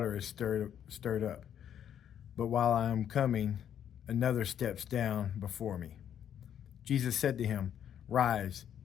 is stirred up. But while I am coming, another steps down before me." Jesus said to him, "Rise,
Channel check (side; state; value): right; quieter; 9.6 dB